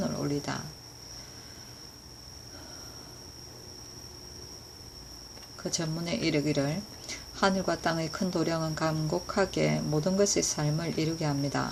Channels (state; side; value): identical; both; correlation 1.00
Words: 올리다. 그 전문에 이르기를 하늘과 땅의 큰 도량은 감곡하게 모든 것의 삶을 이루게